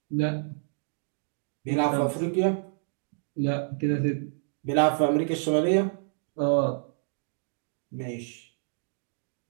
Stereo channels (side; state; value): left; silent; digital silence